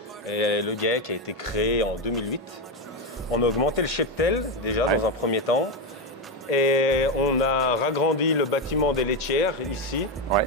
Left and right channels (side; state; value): both; normal; correlation 0.10